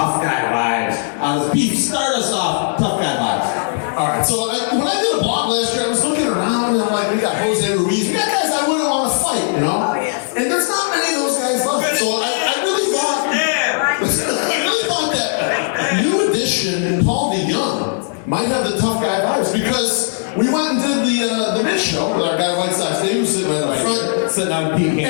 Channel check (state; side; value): silent; right; 60 dB below the other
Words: guy vibes on this beef? Start us off, tough guy vibes. All right. So when I did a blog last year, I was looking around and I'm like, we got Jose Ruiz. We got guys I wouldn't want to fight, you know. And there's not many of those guys left. So I really thought that new addition Paul DeYoung might have the tough guy vibes because we went and did the mid show with our guy White Sox. Dave was sitting right up front, sitting on Pete